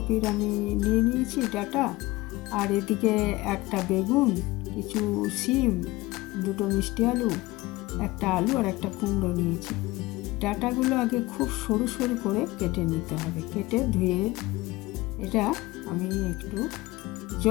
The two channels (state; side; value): quieter; right; 19.8 dB